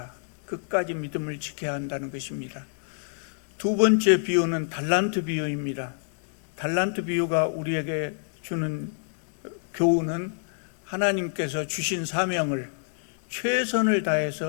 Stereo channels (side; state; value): right; silent; 60 dB below the other